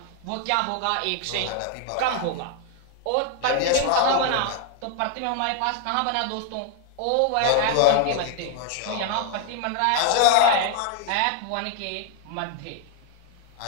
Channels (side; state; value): both; different; correlation 0.00